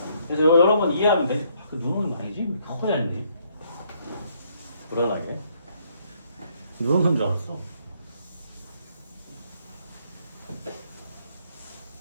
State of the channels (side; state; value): both; inverted; correlation -0.69